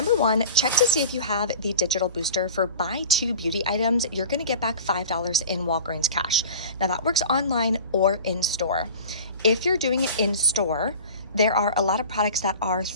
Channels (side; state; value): both; inverted; correlation -0.38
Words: one, check to see if you have the digital booster for buy 2 beauty items. You're going to get back $5 in Walgreens cash. Now that works online or in store. If you're doing it in store, there are a lot of products that are